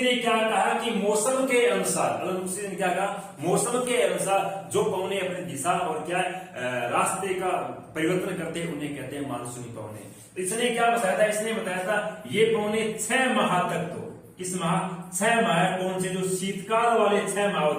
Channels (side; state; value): both; identical; correlation 1.00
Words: क्या कहा कि मौसम के अनुसार, अल मसूदी ने क्या कहा, मौसम के अनुसार जो पवनें अपनी दिशा और क्या रास्ते का परिवर्तन करते हैं उन्हें कहते हैं मानसूनी पवनें। इसने क्या बताया था, इसने बताया था ये पवनें 6 माह तक, तो किस माह, 6 माह, कौन से, जो शीतकाल वाले 6 माह